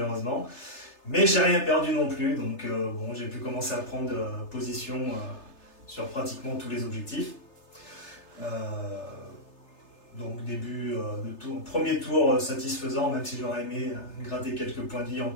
Mais j'ai rien perdu non plus, donc bon, j'ai pu commencer à prendre position sur pratiquement tous les objectifs. Donc début de tour, premier tour satisfaisant, même si j'aurais aimé gratter quelques points de vie en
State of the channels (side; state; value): right; late; 3.3 ms